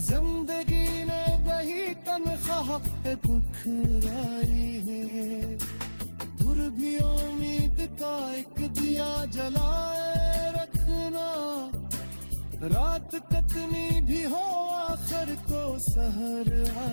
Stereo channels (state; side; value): inverted; both; correlation -1.00